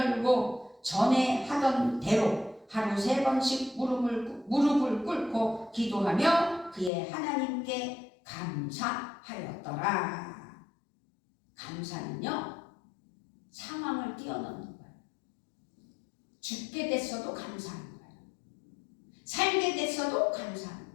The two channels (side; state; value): right; drops out; at 6.9 s